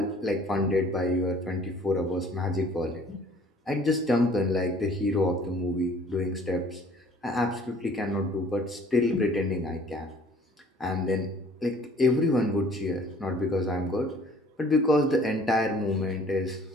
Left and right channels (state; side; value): normal; both; correlation 0.54